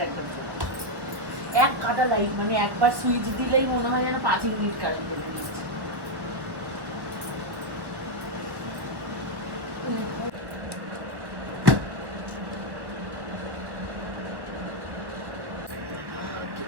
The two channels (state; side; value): late; left; 1.3 ms